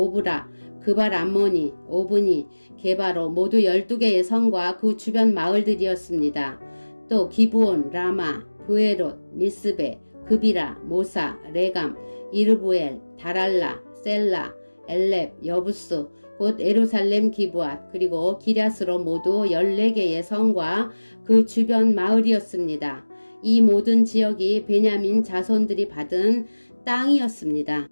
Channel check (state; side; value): inverted; both; correlation -1.00